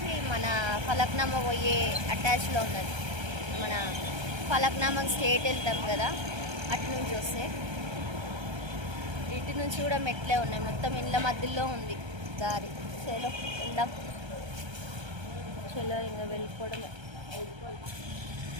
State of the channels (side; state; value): left; late; 1.3 ms